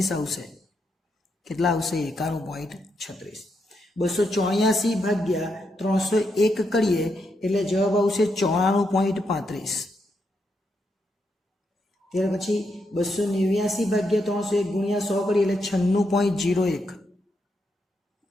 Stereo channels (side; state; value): both; normal; correlation 0.81